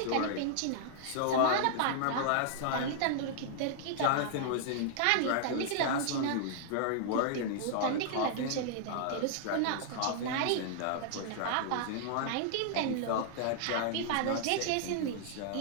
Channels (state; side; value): different; both; correlation -0.01